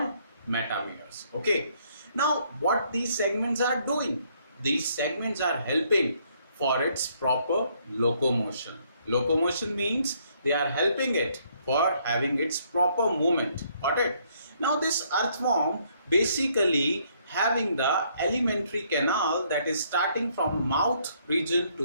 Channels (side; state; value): both; inverted; correlation -0.68